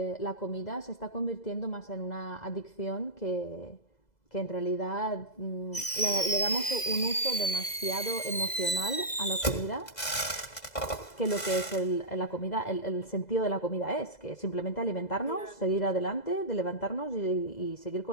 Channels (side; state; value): right; late; 2.0 ms